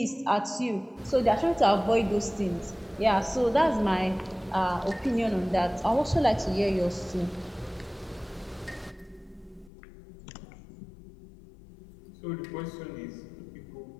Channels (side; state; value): right; drops out; at 9.7 s